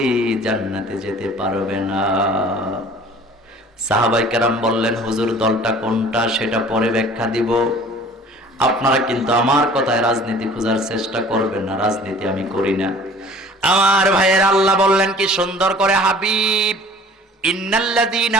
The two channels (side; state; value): both; normal; correlation 0.48